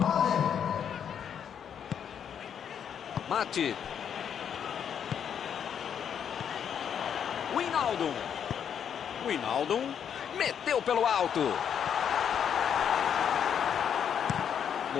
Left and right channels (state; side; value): quieter; right; 8.3 dB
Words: Mate. Wijnaldum. Wijnaldum meteu pelo alto.